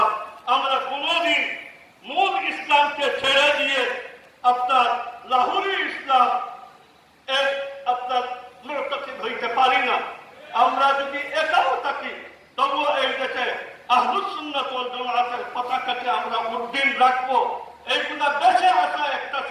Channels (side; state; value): both; identical; correlation 1.00